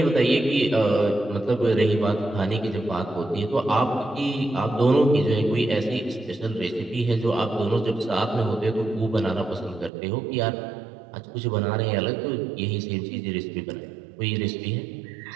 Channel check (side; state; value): left; drops out; at 9.9 s